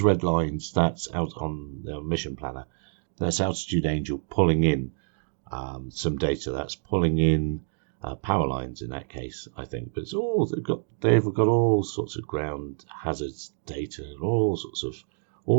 red lines, that's out on the mission planner. That's Altitude Angel pulling in some data. That's pulling in power lines in that case, I think. But it's all they've got all sorts of ground hazards data and all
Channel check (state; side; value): silent; left; 60 dB below the other